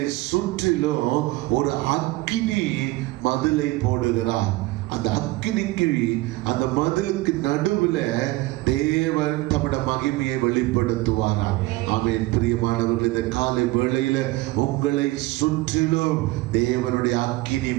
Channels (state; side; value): quieter; left; 19.5 dB